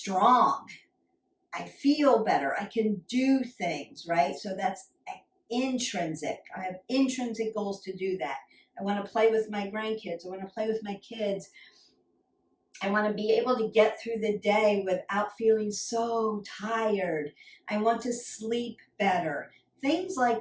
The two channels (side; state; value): both; identical; correlation 1.00